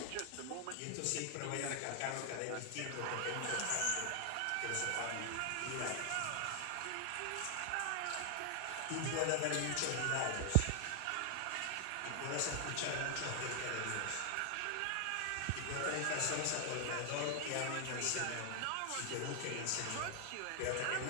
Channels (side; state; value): both; different; correlation 0.00